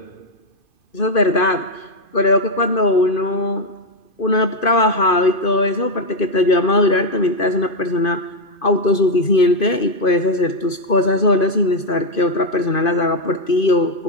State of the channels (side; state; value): right; late; 2.5 ms